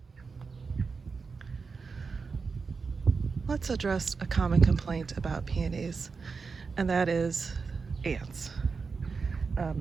Let's address a common complaint about peonies, and that is ants.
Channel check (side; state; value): left; quieter; 4.9 dB